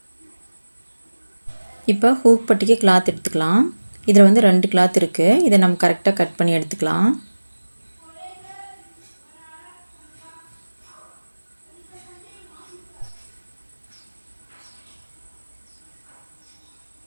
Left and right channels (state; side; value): inverted; both; correlation -1.00